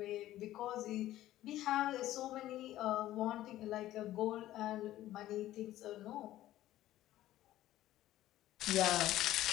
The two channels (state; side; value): quieter; right; 14.3 dB